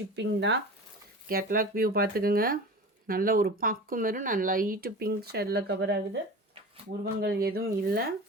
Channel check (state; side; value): normal; both; correlation 0.34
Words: தான். கேட்லாக் வியூ பார்த்துக்கோங்க. நல்ல ஒரு பாக்கு மாரி நான் லைட்டு பிங்க் ஷேடில் கவர் ஆகுது. உருவங்கள் எதுவும் இல்லை.